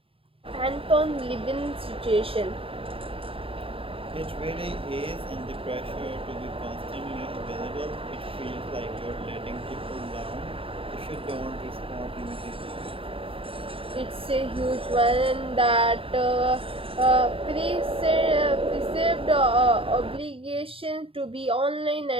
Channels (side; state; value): left; late; 0.27 ms